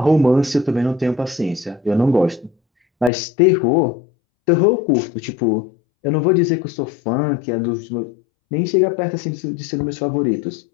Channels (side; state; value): right; drops out; at 3.1 s